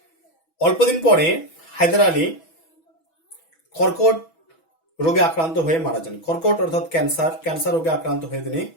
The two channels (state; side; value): late; right; 6.1 ms